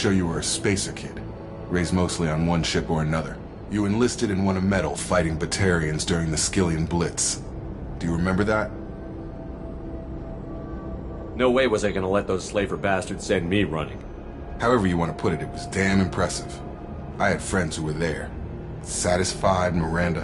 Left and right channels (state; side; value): identical; both; correlation 1.00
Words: you were a spacer kid. Raised mostly on one ship or another. You enlisted and won a medal fighting Batarians during the Skillian Blitz. Do you remember that? No way was I gonna let those slaver bastards send me running. However you want to put it, it was damn impressive. I had friends who were there. Satisfied,